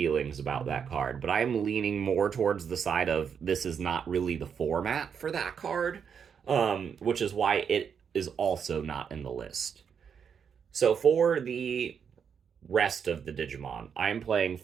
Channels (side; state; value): left; quieter; 7.1 dB